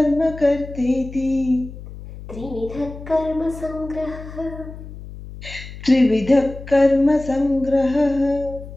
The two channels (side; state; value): left; noise; hum, 14 dB below the sound